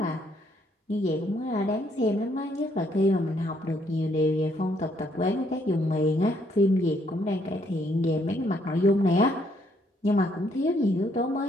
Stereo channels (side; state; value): both; normal; correlation 0.69